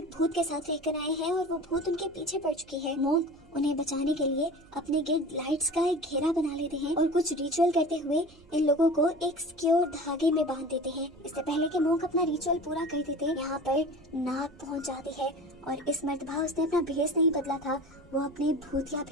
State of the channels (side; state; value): right; noise; hum, 27 dB below the sound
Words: भूत के साथ रहकर आए हैं और वो भूत उनके पीछे पड़ चुकी है। मोंक उन्हें बचाने के लिए अपने गिर्द लाइट्स का एक घेरा बना लेते हैं और कुछ रिचुअल करते हुए इन लोगों को एक सिक्योर धागे में बांध देते हैं। इससे पहले कि मोंक अपना रिचुअल पूरा कर देते यहाँ पर नाग पहुंच जाती है और इस मर्तबा उसने अपना भेष नहीं बदला था, वो अपने भूतिया